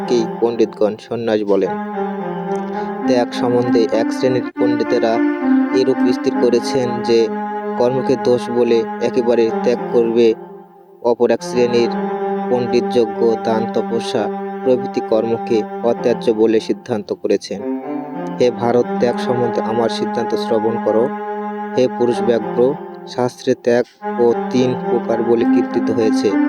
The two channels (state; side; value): identical; both; correlation 1.00